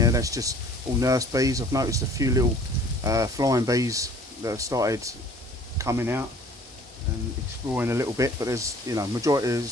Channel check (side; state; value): both; normal; correlation 0.52